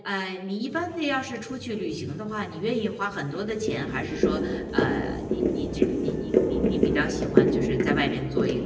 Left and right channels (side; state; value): both; identical; correlation 1.00